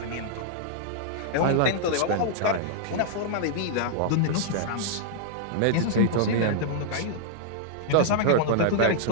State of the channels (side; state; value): both; different; correlation -0.01